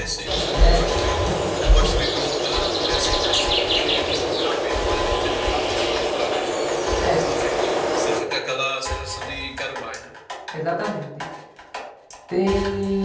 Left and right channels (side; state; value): both; identical; correlation 1.00